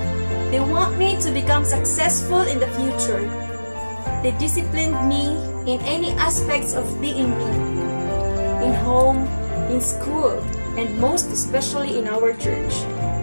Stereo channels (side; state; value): both; inverted; correlation -1.00